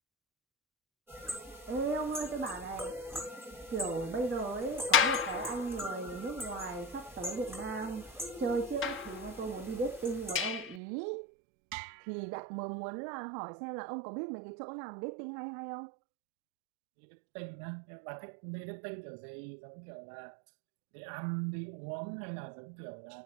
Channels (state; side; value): drops out; left; at 10.8 s